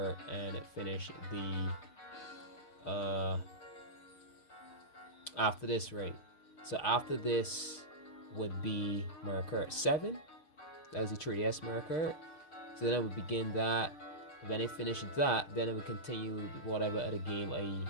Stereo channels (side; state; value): right; late; 6.3 ms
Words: and finish the after this, right? So after this would be Mario Kart 7. That's the 3DS Mario Kart. So then I would begin that. When I finish that, then I would continue whatever other game